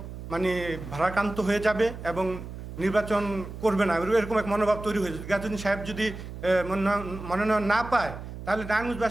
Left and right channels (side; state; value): right; noise; hum, 11 dB below the sound